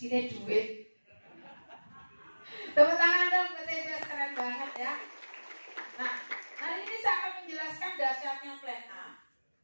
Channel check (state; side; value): inverted; both; correlation -1.00